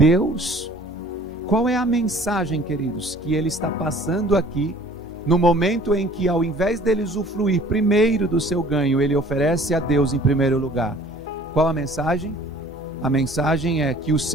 Qual é a mensagem, queridos, que ele está passando aqui, no momento em que, ao invés dele usufruir primeiro do seu ganho, ele oferece a Deus em primeiro lugar? Qual a mensagem? A mensagem é que o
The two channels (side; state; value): both; normal; correlation 0.51